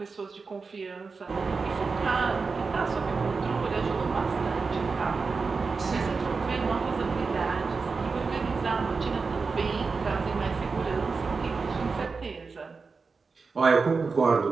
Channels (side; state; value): left; quieter; 4.6 dB